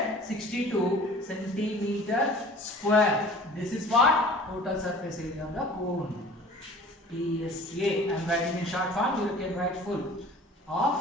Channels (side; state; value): both; normal; correlation 0.46